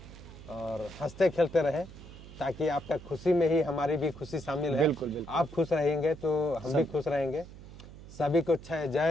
और हंसते खेलते रहें, ताकि आपका खुशी में ही हमारी भी खुशी शामिल है। बिल्कुल। आप खुश रहेंगे तो हम भी खुश रहेंगे। सभी को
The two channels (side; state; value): right; noise; hum, 16 dB below the sound